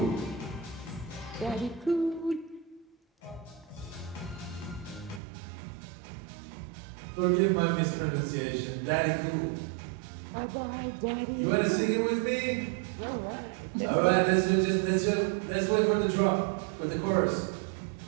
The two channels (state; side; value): drops out; left; at 5.2 s